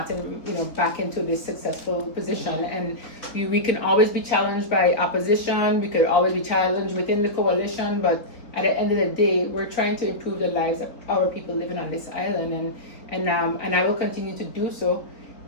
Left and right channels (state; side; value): late; right; 4.2 ms